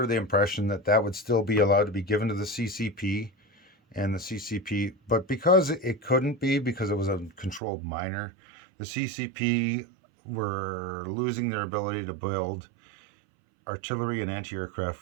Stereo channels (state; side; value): drops out; left; at 7.6 s